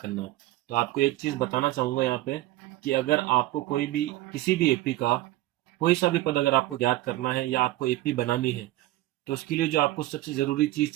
करना है। तो आपको एक चीज बताना चाहूंगा यहाँ पे कि अगर आपको कोई भी किसी भी एपी का कोई सा भी पद अगर आपको ज्ञात करना है या आपको एपी बनानी है, तो उसके लिए जो आपको सबसे जरूरी चीज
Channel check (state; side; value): quieter; left; 16.3 dB